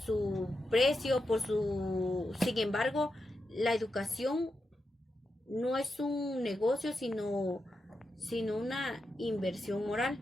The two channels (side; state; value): both; normal; correlation 0.87